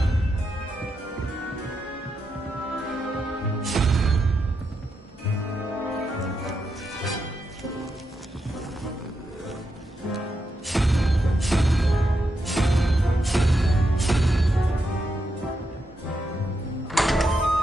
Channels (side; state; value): both; normal; correlation 0.84